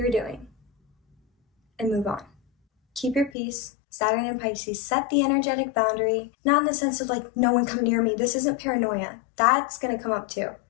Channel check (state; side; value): drops out; right; at 3.3 s